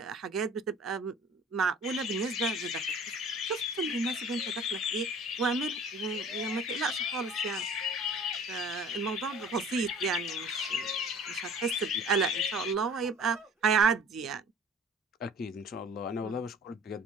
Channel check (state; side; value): normal; both; correlation 0.46